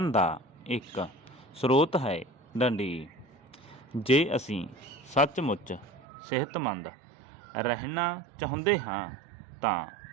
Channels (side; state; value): left; drops out; at 6.1 s